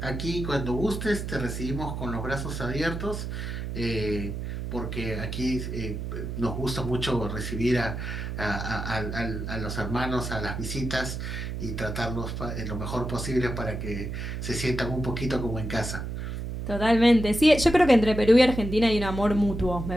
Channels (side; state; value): right; noise; hum, 5 dB below the sound